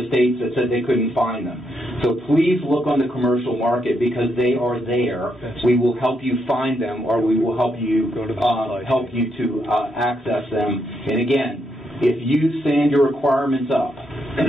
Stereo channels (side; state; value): both; normal; correlation 0.78